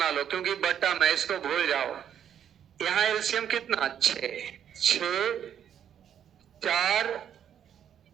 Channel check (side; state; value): left; quieter; 9.3 dB